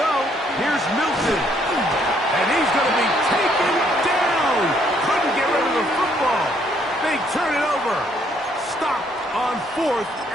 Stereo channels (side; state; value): both; normal; correlation 0.68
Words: Here's Milton. And he's going to be taken down. Couldn't get rid of the football. They turn it over. Stop on 4th